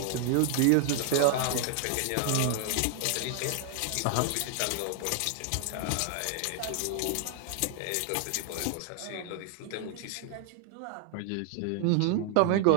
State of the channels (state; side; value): different; both; correlation 0.00